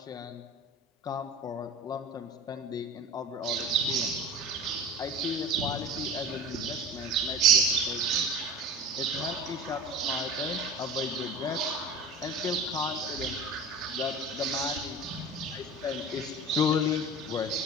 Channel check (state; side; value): normal; both; correlation 0.36